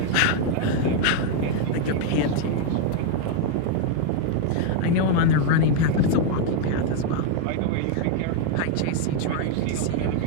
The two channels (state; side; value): different; both; correlation 0.00